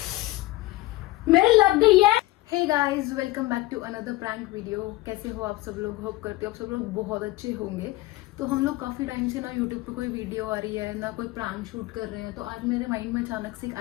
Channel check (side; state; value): right; quieter; 18.6 dB